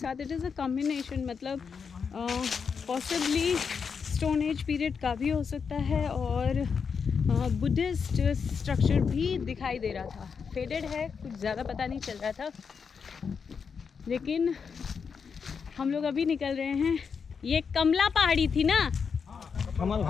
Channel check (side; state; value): right; quieter; 6.0 dB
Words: इट इज़ अ कॉम्बिनेशन, मतलब पॉसिबली स्टोन एज पीरियड का भी हो सकता है और बुद्धिस्ट स्ट्रक्चर भी दिखाई दे रहा था। फेडेड है, कुछ ज़्यादा पता नहीं चल रहा था, लेकिन हम लोग अभी निकल रहे हैं। ये कमला पहाड़ी थी ना? कमल